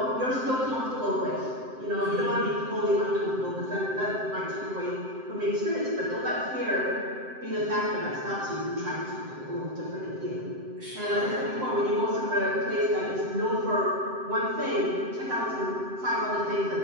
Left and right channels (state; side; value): late; left; 7.7 ms